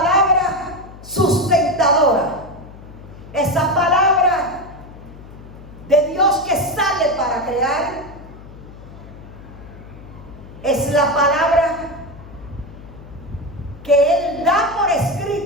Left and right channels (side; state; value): left; noise; hum, 17 dB below the sound